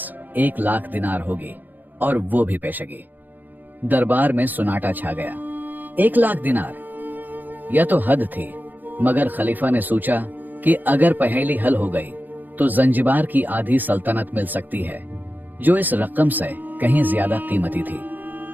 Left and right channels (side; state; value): left; late; 0.086 ms